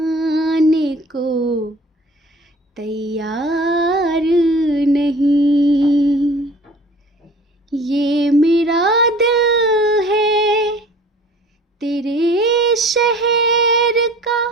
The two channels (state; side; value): normal; both; correlation 0.47